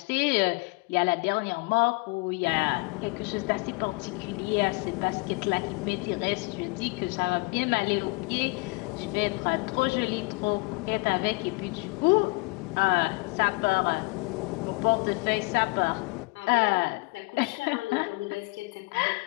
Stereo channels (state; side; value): quieter; right; 27.9 dB